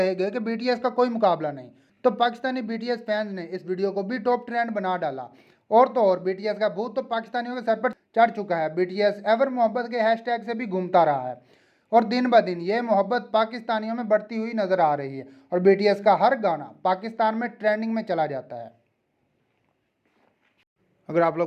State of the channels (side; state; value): both; identical; correlation 1.00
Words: गए कि बीटीएस का कोई मुकाबला नहीं, तो पाकिस्तानी बीटीएस फैंस ने इस वीडियो को भी टॉप ट्रेंड बना डाला। और तो और बीटीएस का भूत तो पाकिस्तानियों के सर पर चढ़ चुका है। बीटीएस एवर मोहब्बत के हैशटैग से भी घूमता रहा है और दिन ब दिन ये मोहब्बत पाकिस्तानियों में बढ़ती हुई नजर आ रही है और बीटीएस का हर गाना पाकिस्तान में ट्रेंडिंग में चला जाता है। अगर आप